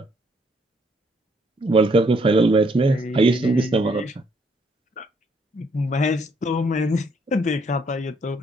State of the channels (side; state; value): both; normal; correlation 0.69